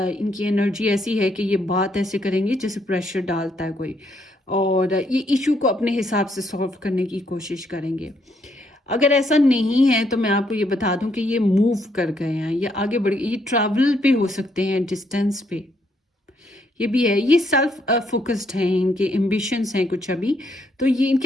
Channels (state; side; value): normal; both; correlation 0.73